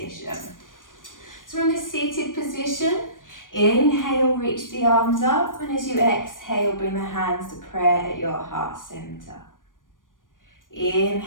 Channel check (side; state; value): right; late; 0.89 ms